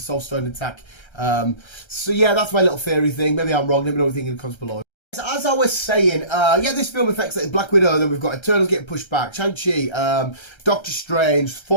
Soul Stone intact. So yeah, that's my little theory thing. Maybe I'm wrong. Let me know what you think in the comments below. As I was saying, yeah, this film affects like Black Widow, then we've got Eternals getting pushed back, Shang-Chi, Doctor Strange,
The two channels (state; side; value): late; right; 1.3 ms